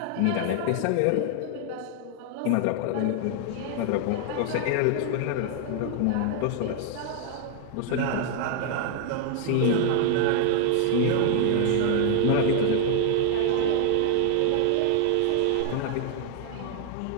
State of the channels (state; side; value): different; both; correlation 0.00